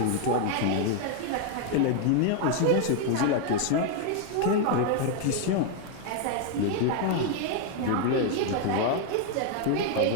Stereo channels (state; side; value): different; both; correlation 0.00